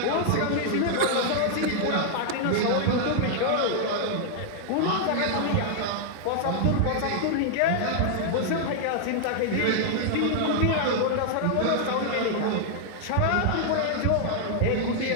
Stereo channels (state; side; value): different; both; correlation -0.01